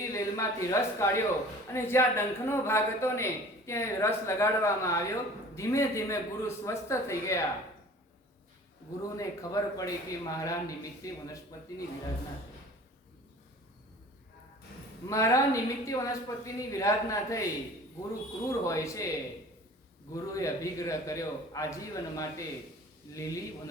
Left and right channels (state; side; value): normal; both; correlation 0.45